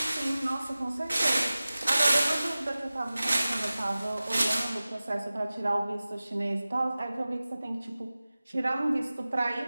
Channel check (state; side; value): inverted; both; correlation -0.97